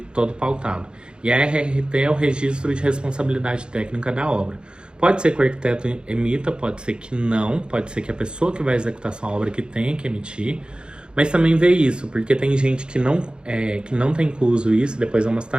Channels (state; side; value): late; left; 0.051 ms